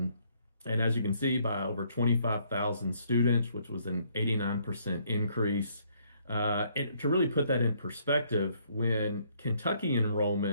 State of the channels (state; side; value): inverted; both; correlation -0.67